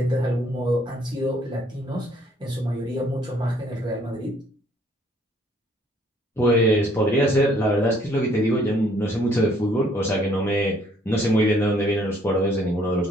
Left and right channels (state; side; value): normal; both; correlation 0.63